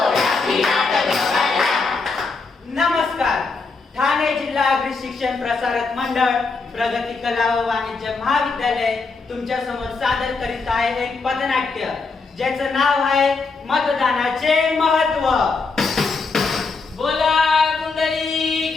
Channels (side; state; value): right; quieter; 4.3 dB